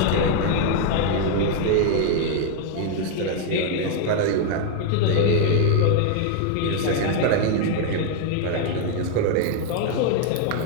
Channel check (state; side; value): different; both; correlation 0.00